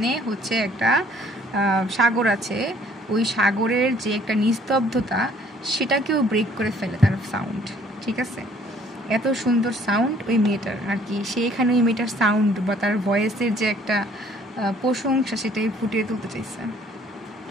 হচ্ছে একটা সাগর আছে। ওই সাগরের যে একটা নিস্তব্ধতা সেটাকেও ব্রেক করে ফেলে তার সাউন্ড, ঠিক আছে। এত সুন্দর সাউন্ড ওই মেয়েটার আর কি, সে এখানে ওই মেয়েটার সাউন্ড বা তার ভয়েসের যে একটা প্রশংসা সেটাই ফুটিয়ে তুলতে চাইছে।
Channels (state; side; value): normal; both; correlation 0.59